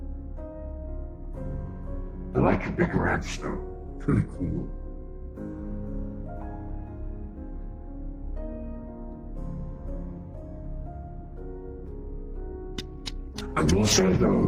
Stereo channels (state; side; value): identical; both; correlation 1.00